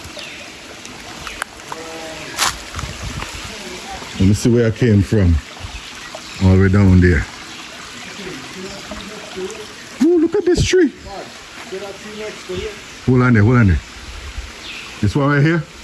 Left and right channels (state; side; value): identical; both; correlation 1.00